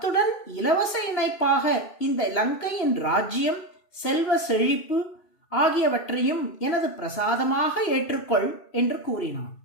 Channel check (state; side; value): late; right; 2.6 ms